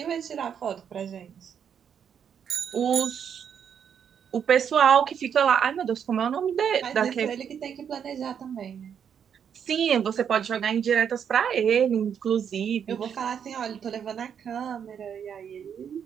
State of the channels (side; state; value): left; quieter; 7.9 dB